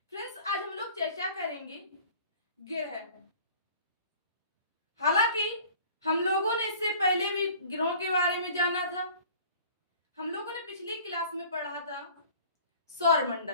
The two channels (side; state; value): both; inverted; correlation -0.48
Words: फ्रेंड्स, आज हम लोग चर्चा करेंगे ग्रह। हालांकि हम लोगों ने इससे पहले भी ग्रहों के बारे में जाना था। हम लोगों ने पिछली क्लास में पढ़ा था